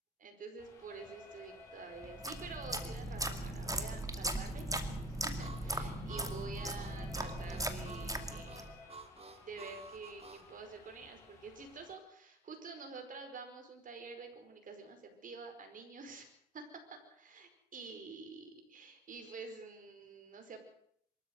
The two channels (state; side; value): normal; both; correlation 0.41